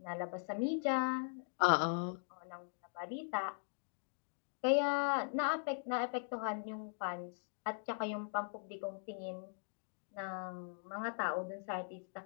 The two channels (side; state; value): right; silent; digital silence